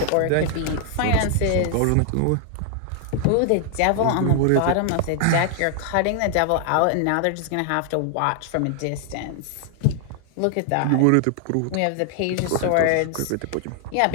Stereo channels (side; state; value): both; different; correlation 0.00